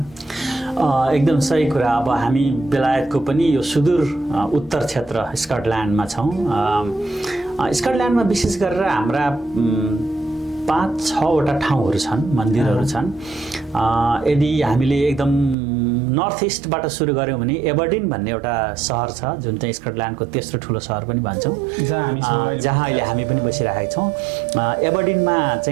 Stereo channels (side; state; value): left; drops out; at 15.6 s